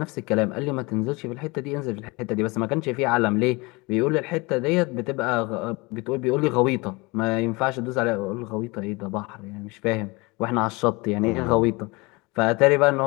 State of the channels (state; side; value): quieter; right; 25.6 dB